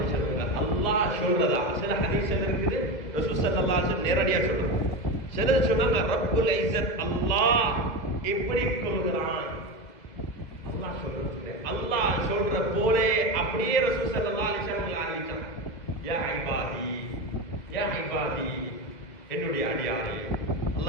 வஸல்லம் அல்லாஹ் சொல்றதா சில ஹதீஸ்ல இருக்குது, ரசூல் ஸல்லல்லாஹு அலைஹி வஸல்லம் நேரடியா சொல்றாங்க. சிலர் சொன்னாங்க ரப்புல் இஸ்ஸத் அல்லாஹ் எப்படி சொல்கிறான், அல்லாஹ் சொல்றது அல்லாஹ் சொல்ற போலே அப்படியே ரசூல் ஸல்லல்லாஹு அலைஹி வஸல்லம் அறிவிச்சாங்க. யா இபாதி, யா இபாதி, என்னுடைய அடியாரே.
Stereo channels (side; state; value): right; late; 2.0 ms